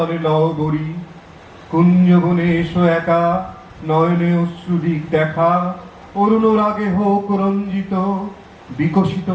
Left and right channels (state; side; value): identical; both; correlation 1.00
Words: লহবরী, কুঞ্জবনে এসো একা, নয়নে অশ্রুদিক দেখা, অরুণ রাগে হোক রঞ্জিত, বিকশিত